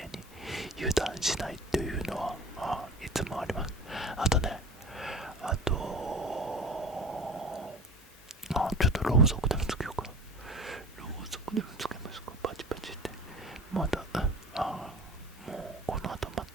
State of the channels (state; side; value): normal; both; correlation 0.38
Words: に油断しないというのはいつもあります。あとちょっとろうそくでもつけようかな。ろうそくでもつけますか？パチパチって。まだもうこの後ま